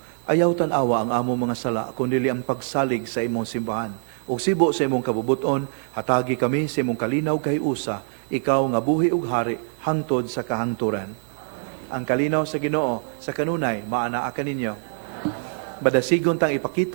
Ayaw tan-awa ang among mga sala, kundi ang pagsalig sa imong simbahan. Ug sibo sa imong kabubuton, hatagi kami sa imong kalinaw kay usa, ikaw nga buhi ug hari hangtod sa kahangturan. Ang kalinaw sa Ginoo sa kanunay maanaa kaninyo. Badasigon tang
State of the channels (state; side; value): silent; left; digital silence